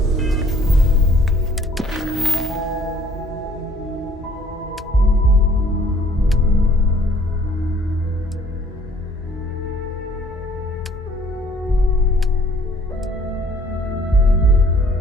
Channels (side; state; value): both; normal; correlation 0.58